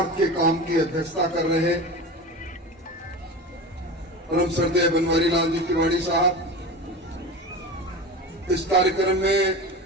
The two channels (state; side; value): normal; both; correlation 0.29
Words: के काम की अध्यक्षता कर रहे परम श्रद्धेय बनवारी लाल जी तिवारी साहब, इस कार्यक्रम में